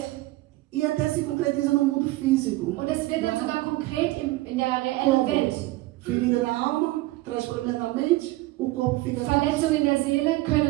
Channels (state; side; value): quieter; left; 19.2 dB